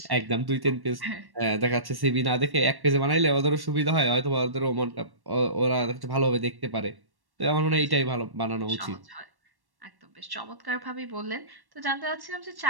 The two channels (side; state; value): left; late; 1.1 ms